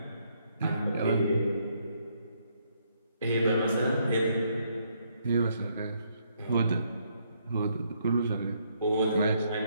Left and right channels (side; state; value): both; inverted; correlation -0.72